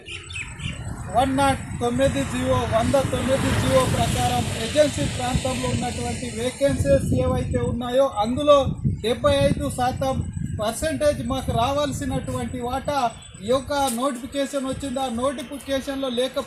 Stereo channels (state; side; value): identical; both; correlation 1.00